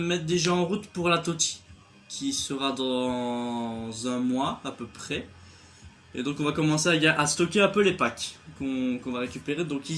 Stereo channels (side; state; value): both; identical; correlation 1.00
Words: mettre déjà en route pour la Totti, qui sera dans un mois à peu près. Et donc on va commencer à stocker un peu les packs qu'on va récupérer. Donc